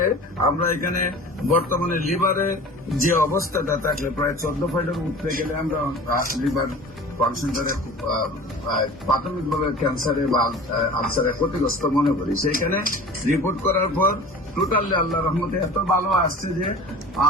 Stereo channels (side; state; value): both; normal; correlation 0.40